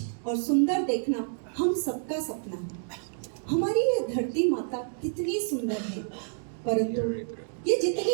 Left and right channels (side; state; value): left; silent; digital silence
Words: और सुंदर देखना हम सबका सपना है। हमारी ये धरती माता कितनी सुंदर है, परंतु ये